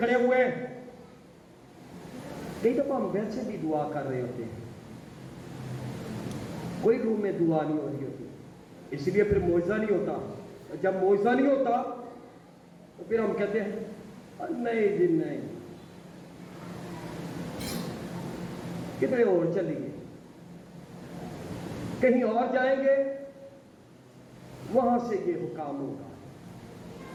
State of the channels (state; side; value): identical; both; correlation 1.00